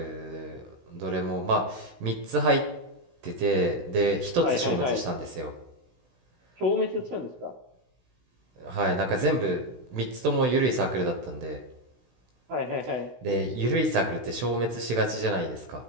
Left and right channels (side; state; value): left; late; 16 ms